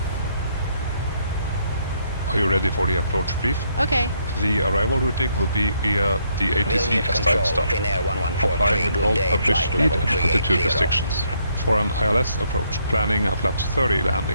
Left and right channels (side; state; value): both; inverted; correlation -0.72